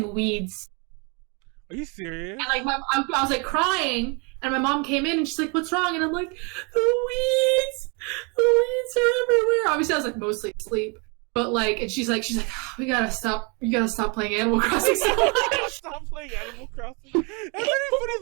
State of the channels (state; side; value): quieter; left; 32.6 dB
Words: weeds. Are you serious? And like I was like crying, and my mom came in and she's like, "What's wrong?" And I'm like, the weeds are everywhere." Obviously, I was like mostly asleep. But like, and she's like, oh, you gotta stop playing Animal Crossing so much. Stop playing Animal Crossing. That's very funny.